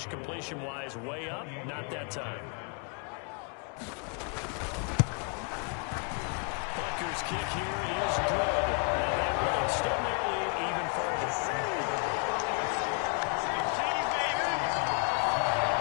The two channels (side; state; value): right; quieter; 37.2 dB